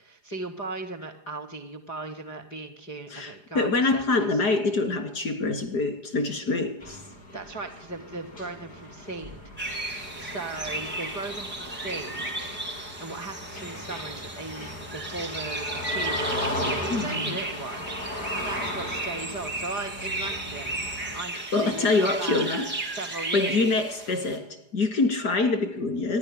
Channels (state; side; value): late; right; 4.9 ms